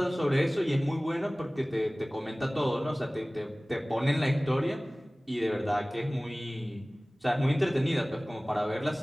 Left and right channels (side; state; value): both; normal; correlation 0.98